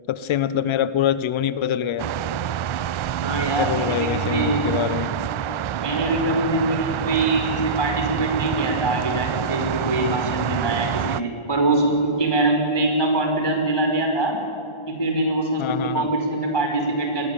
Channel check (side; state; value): right; late; 1.3 ms